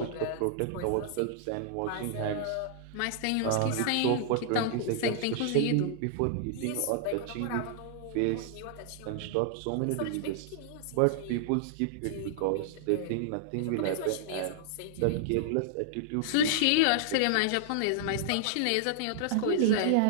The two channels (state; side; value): different; both; correlation -0.01